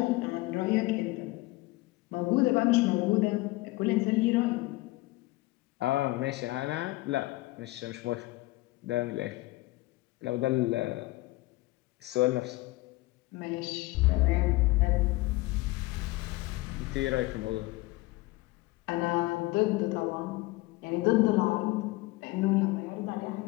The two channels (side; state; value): right; quieter; 20.7 dB